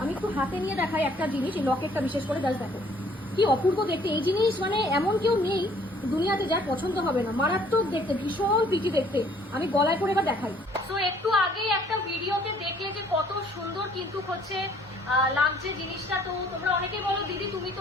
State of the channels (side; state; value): both; normal; correlation 0.60